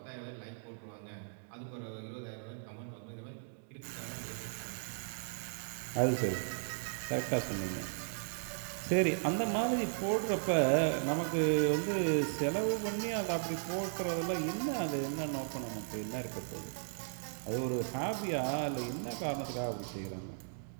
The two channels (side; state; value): left; silent; digital silence